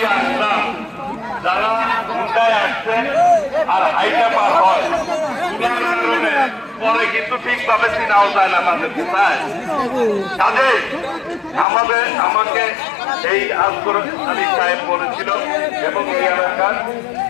আসলাম, যারা ঢুকায় আসছেন আর হাইটা পার হয়, পরে কিন্তু ঠিকভাবে চিনাও যায় না তাদের কোথায়। কাজে আমাকে এই আসগর আলী সাহেব বলেছিল এবং এই এলাকার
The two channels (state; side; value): drops out; right; at 11.7 s